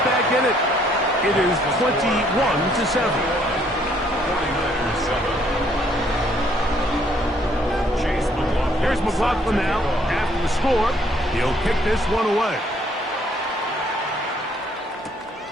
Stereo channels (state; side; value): normal; both; correlation 0.65